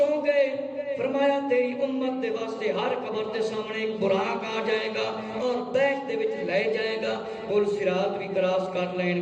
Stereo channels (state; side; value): identical; both; correlation 1.00